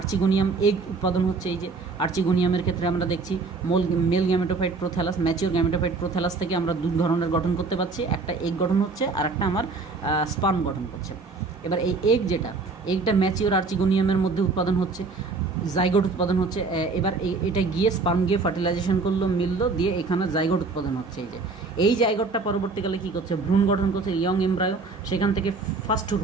এগ উৎপাদন হচ্ছে। এই যে আর্চিগোনিয়ামের ক্ষেত্রে আমরা দেখছি male gametophyte prothallus, mature gametophyte prothallus থেকে আমরা দু ধরনের গঠন করতে পারছি, একটা এগ গঠন হচ্ছে আর একটা আমার স্পার্ম গঠন করছে। এবার এই এগটা ম্যাচিওর আর্চিগোনিয়ামের মধ্যে উৎপাদন হচ্ছে, জাইগোট উৎপাদন হচ্ছে। এবার এটা গিয়ে স্পার্ম গিয়ে ফার্টিলাইজেশন করলো, মিললো, দিয়ে এখানে জাইগোট উৎপাদন হচ্ছে। এই জাইগোটটা পরবর্তীকালে কী করছে? ভ্রূণ গঠন করছে, ইয়ং এমব্রায়ো। সেখান থেকে ফার্স্ট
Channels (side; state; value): left; quieter; 4.1 dB